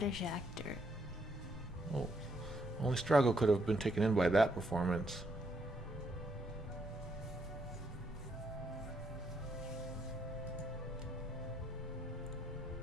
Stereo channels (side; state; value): both; normal; correlation 0.75